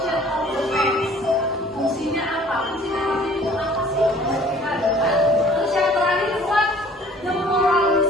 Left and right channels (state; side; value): normal; both; correlation 0.53